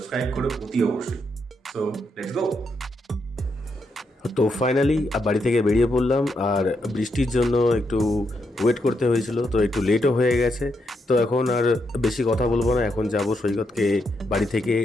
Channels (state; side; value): normal; both; correlation 0.80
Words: করো অতি অবশ্যই। So let's go. তো ফাইনালি বাড়ি থেকে বেরিয়ে পড়লাম, আর বৃষ্টির জন্য একটু ওয়েট করতে হয়েছিল, তো একটু লেটও হয়ে গেছে। তো এখন আর বেশি কথা বলবো না, এখন যাব সৈকতকে বাড়ি থেকে